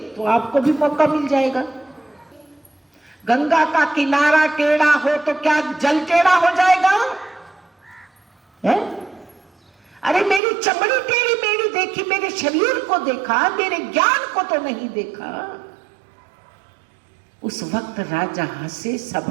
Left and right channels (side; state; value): left; drops out; at 10.4 s